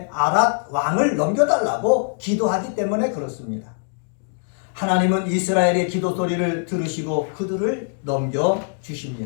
아랏 왕을 넘겨달라고 기도하기 때문에 그렇습니다. 하나님은 이스라엘의 기도 소리를 들으시고 그들을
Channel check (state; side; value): silent; right; digital silence